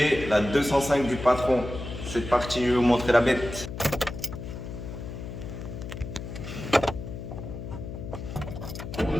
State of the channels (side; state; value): left; noise; hum, 9 dB below the sound